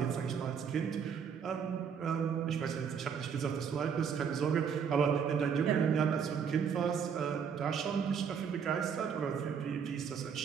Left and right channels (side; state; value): left; quieter; 7.0 dB